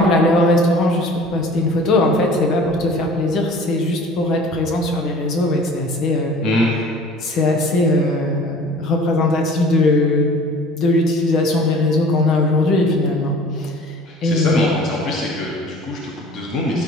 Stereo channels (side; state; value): both; normal; correlation 0.46